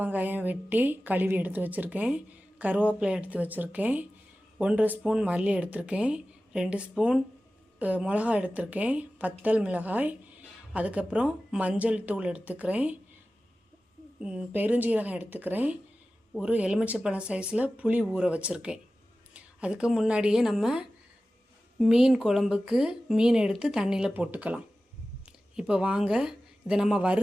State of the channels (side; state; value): both; normal; correlation 0.95